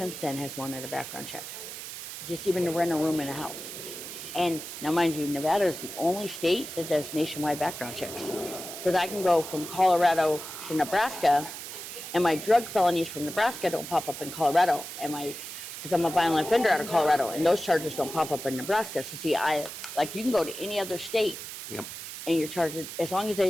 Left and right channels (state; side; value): noise; right; hiss, 9 dB below the sound